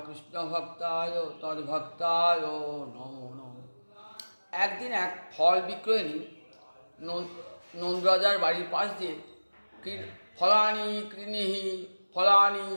কৃষ্ণভক্তায় তদ্ভক্তায় নমো নমঃ। একদিন এক ফল বিক্রয়িনী নন্দরাজার বাড়ির পাশ দিয়ে ফলানি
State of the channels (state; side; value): inverted; both; correlation -1.00